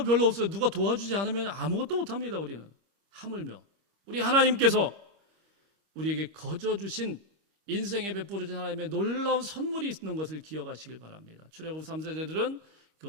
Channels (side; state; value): left; late; 25 ms